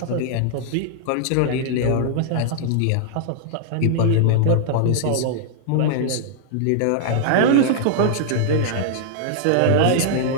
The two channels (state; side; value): different; both; correlation -0.01